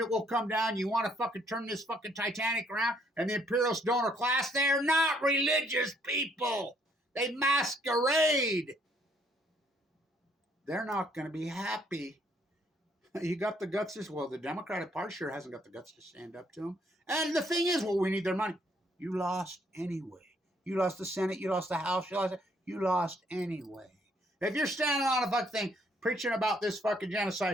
will come down. You want to fucking turn this fucking Titanic around? And the imperialist donor class, they're not religious people. They masquerade. They're not going to be happy. You got the guts as well. The Democratic Party sure hasn't got the guts to stand up to them. And the thing is, well, we need their money. You lost anyway. You lost the Senate. You lost the House. You lost anyway. If you're standing on a fucking thing preaching about this fucking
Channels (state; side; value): normal; both; correlation 0.67